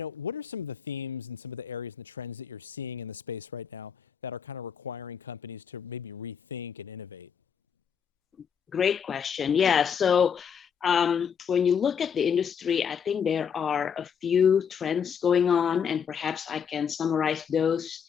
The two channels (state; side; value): quieter; right; 7.3 dB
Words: are some of the themes and some of the areas and the trends that you're seeing in the space right now that are kind of requiring companies to maybe rethink and innovate? Great question. Yeah. So when you look at the industry, I think there are a few trends going on, and perhaps I can summarize those